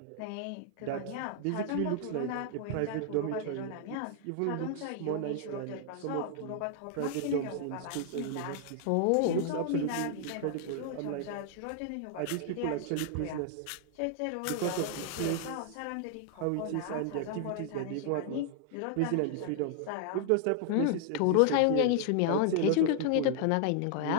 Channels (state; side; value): different; both; correlation 0.00